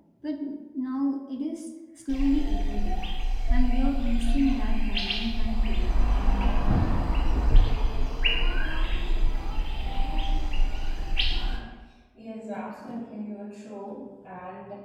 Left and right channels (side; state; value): both; identical; correlation 1.00